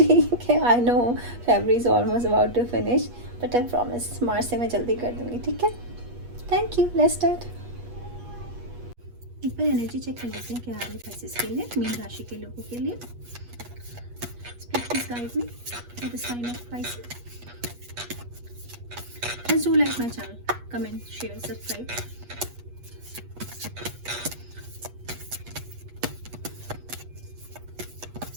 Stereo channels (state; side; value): late; left; 8.4 ms